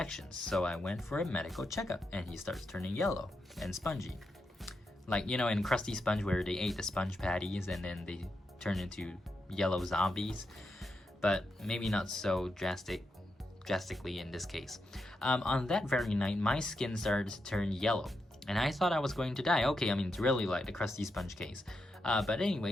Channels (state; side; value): normal; both; correlation 0.84